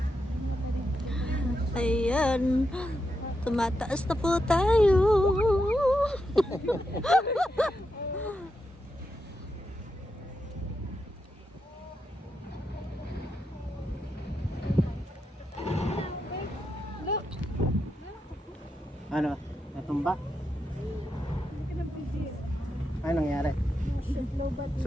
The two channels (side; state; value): both; normal; correlation 0.85